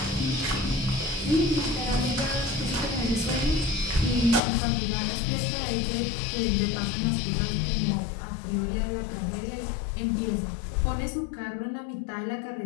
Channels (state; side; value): drops out; right; at 4.4 s